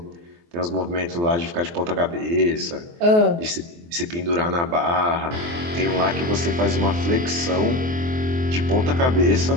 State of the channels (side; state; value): left; late; 23 ms